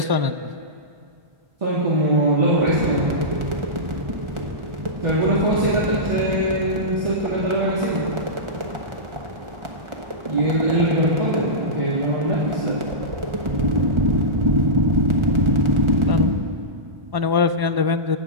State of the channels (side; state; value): left; late; 1.4 ms